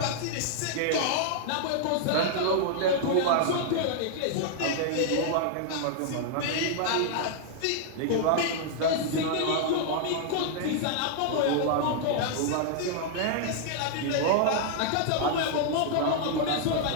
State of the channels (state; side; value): different; both; correlation -0.01